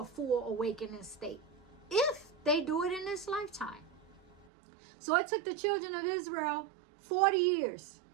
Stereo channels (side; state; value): left; drops out; at 4.5 s